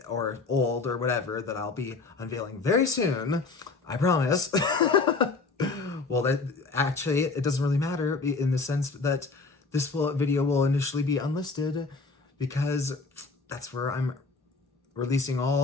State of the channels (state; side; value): quieter; right; 4.1 dB